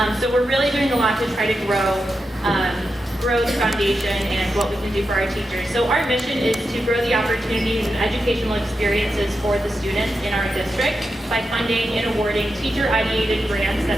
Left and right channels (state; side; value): normal; both; correlation 0.88